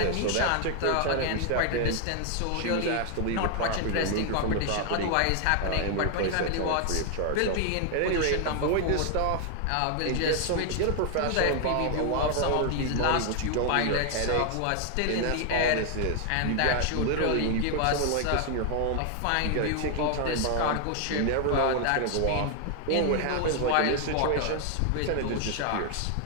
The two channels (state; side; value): different; both; correlation 0.00